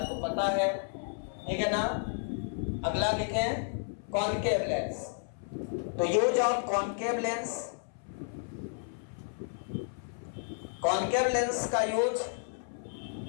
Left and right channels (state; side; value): silent; right; 56 dB below the other